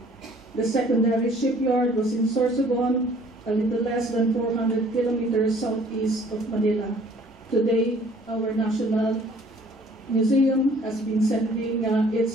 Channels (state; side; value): normal; both; correlation 0.56